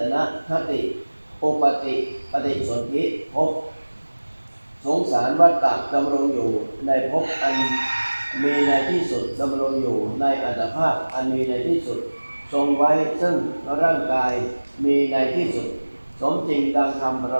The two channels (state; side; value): inverted; both; correlation -1.00